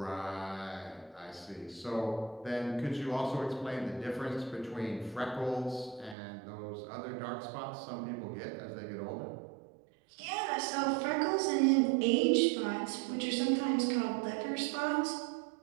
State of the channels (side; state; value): left; drops out; at 6.2 s